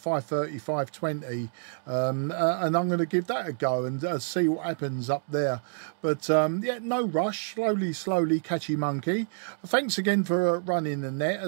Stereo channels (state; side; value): silent; left; digital silence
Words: 5:20, and I'm going to give that a go and see what happens up there. But yeah, no rush, slowly, catchy monkey. Thanks again for running the net.